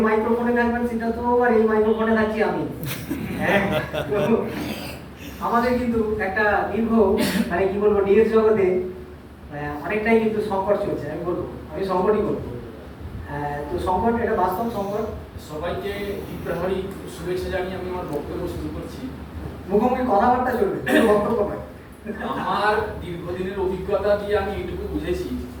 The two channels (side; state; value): both; identical; correlation 1.00